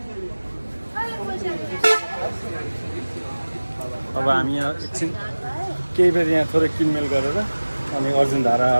अब हामी यहाँ एकछिन केही बेर यहाँ थोरै किनमेल गरेर अनि अर्जुन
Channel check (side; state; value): both; inverted; correlation -1.00